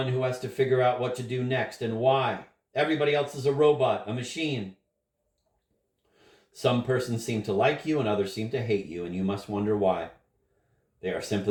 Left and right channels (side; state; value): both; identical; correlation 1.00